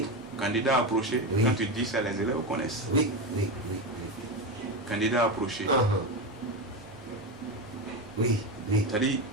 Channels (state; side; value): normal; both; correlation 0.16